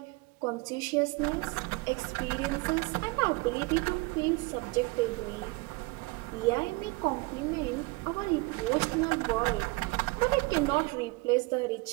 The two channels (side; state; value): left; quieter; 24.3 dB